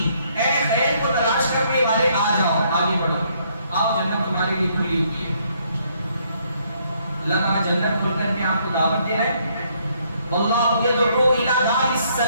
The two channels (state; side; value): inverted; both; correlation -0.69